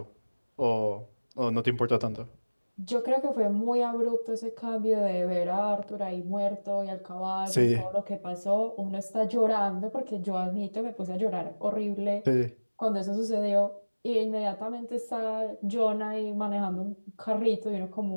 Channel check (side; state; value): both; inverted; correlation -1.00